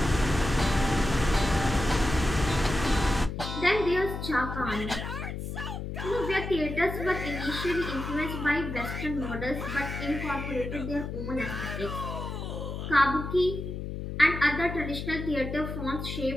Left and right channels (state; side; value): noise; left; hum, 6 dB below the sound